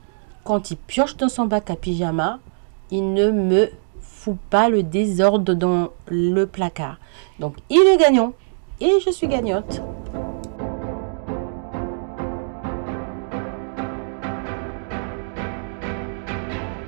Quand il pioche dans son bac à pyjama, il ne me fout pas le désordre dans le placard. Donc, il est gagnant et je suis gagnante.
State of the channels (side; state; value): left; silent; digital silence